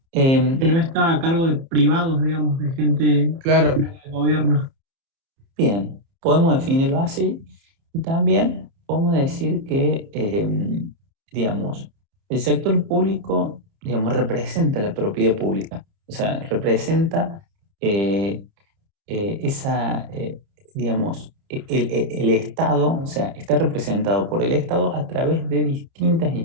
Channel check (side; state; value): left; late; 30 ms